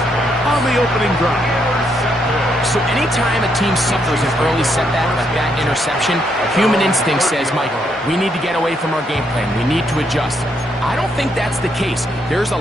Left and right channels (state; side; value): normal; both; correlation 0.76